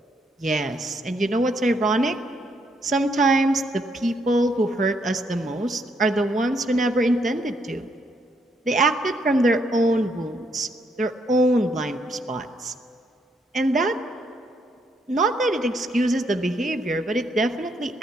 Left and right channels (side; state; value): both; normal; correlation 0.74